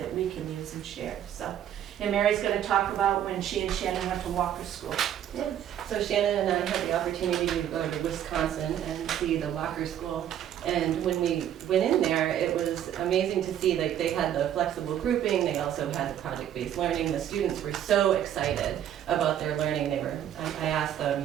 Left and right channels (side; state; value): left; quieter; 10.5 dB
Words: we can use and share. So, and Mary's going to talk about when she and Shannon went to Walker School. Yeah. So Shannon and I had the opportunity to go to Wisconsin and see the Walker School. And when we went in there, it was amazing to see, like, they had the flexible grouping, they also had the project-based learning. The students were so excited about their learning. I asked them,